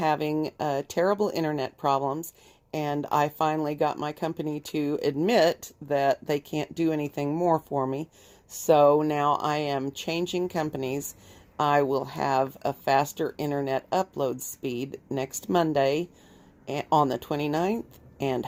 terrible internet problems, and I finally got my company to admit that they can't do anything more for me. So now I am changing companies. I will have a faster internet upload speed next Monday on the 29th, and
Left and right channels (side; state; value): both; identical; correlation 1.00